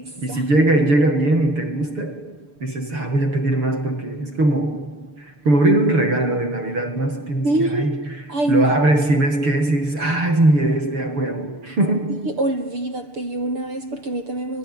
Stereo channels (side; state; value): left; late; 6.8 ms